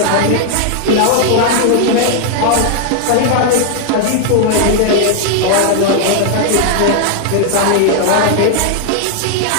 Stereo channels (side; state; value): both; different; correlation 0.00